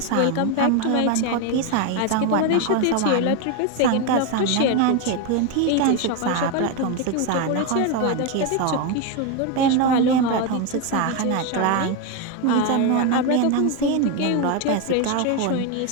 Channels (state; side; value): different; both; correlation 0.02